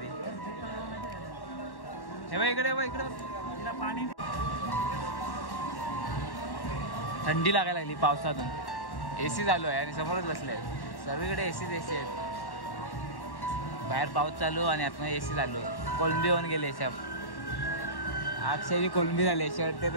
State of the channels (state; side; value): late; right; 1.1 ms